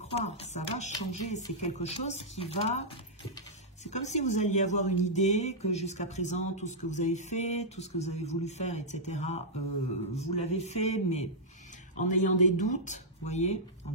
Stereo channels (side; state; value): both; normal; correlation -0.09